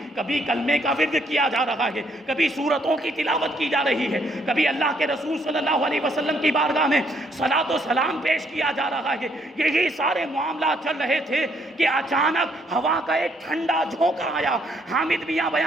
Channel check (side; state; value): both; normal; correlation 0.70